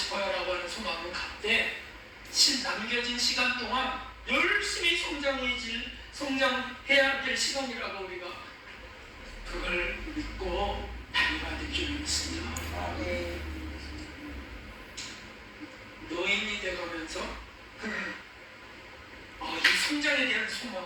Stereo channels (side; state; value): both; identical; correlation 1.00